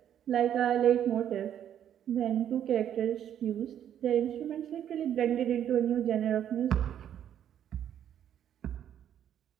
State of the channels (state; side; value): quieter; left; 10.0 dB